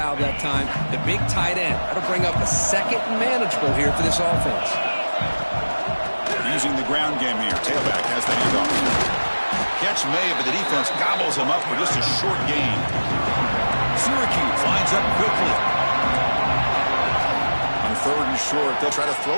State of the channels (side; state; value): both; inverted; correlation -1.00